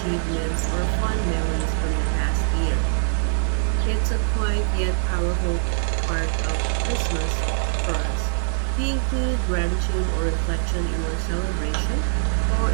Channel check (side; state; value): left; silent; digital silence